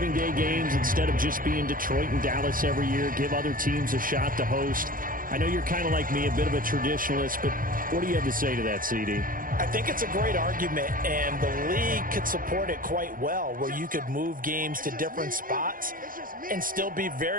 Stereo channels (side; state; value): left; late; 0.40 ms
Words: Day games instead of just being Detroit and Dallas every year, give other teams a shot to host? I know you're kind of like me, a bit of a traditionalist, but what do you have to say to that, CD? I think it's a great argument, and the league could support it quite well, where you could move games to different spots and still be